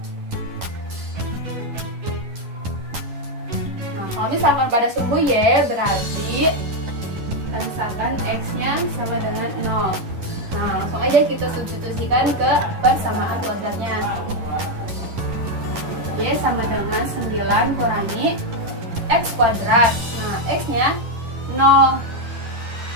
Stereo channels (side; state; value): left; late; 11 ms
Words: Kalau misalkan pada sumbu Y berarti misalkan X-nya sama dengan 0. Nah, langsung aja kita substitusikan ke persamaan kuadratnya. Y sama dengan 9 kurangi X kuadrat. Nah, X-nya 0.